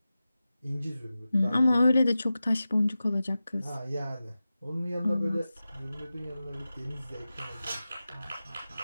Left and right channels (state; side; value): inverted; both; correlation -0.94